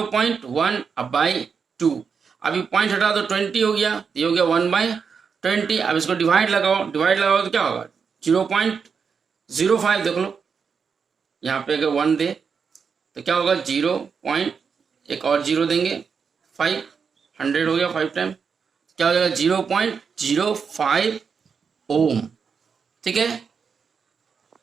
अब बाई 2। अभी पॉइंट हटा दो, 20 हो गया, ये हो गया 1/20। अब इसको डिवाइड लगाओ, डिवाइड लगाओ तो क्या होगा, 0.05। देख लो यहाँ पे अगर 1 दे तो क्या होगा, 0 पॉइंट, एक और 0 देंगे, 5, 100 हो गया, 5 टाइम क्या हो जाएगा, 0.05 ओम। ठीक है,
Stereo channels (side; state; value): left; quieter; 6.0 dB